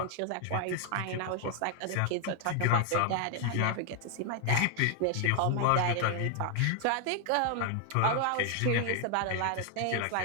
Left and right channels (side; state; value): both; different; correlation 0.00